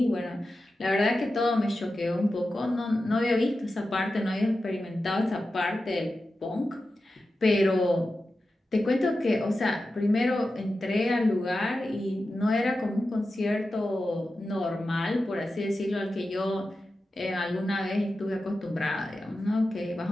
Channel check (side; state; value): both; normal; correlation 0.92